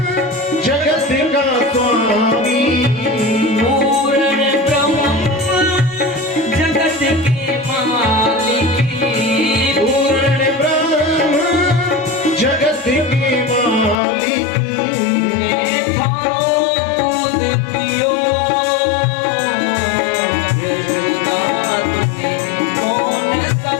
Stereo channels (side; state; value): right; drops out; at 14.0 s